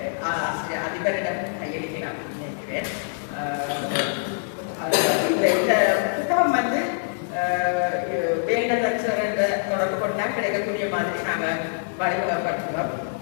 அதிபரிடம் கையளிக்கலாம் நினைக்கிறேன். இந்த புத்தகம் வந்து வேண்டதற்ற தொடர்பு கொண்டா கிடைக்கக்கூடிய மாதிரி நாங்கள் வழிமுறைப்படுத்துவோம்.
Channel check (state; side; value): silent; right; digital silence